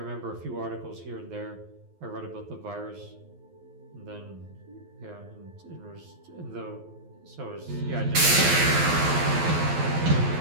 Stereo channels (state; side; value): late; left; 12 ms